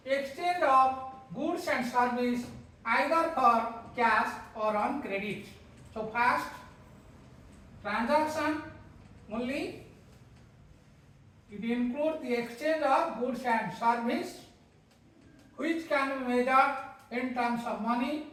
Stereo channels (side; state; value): both; identical; correlation 1.00